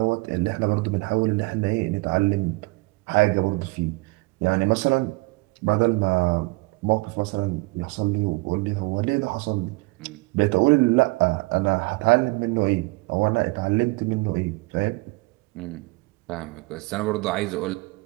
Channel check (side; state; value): left; quieter; 25.7 dB